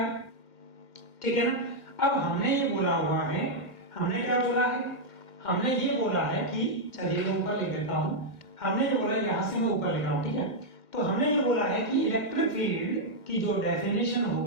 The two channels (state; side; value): late; right; 1.7 ms